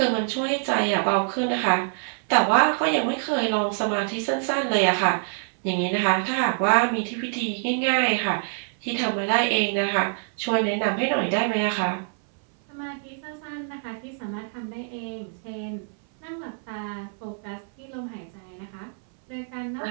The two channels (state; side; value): silent; left; 60 dB below the other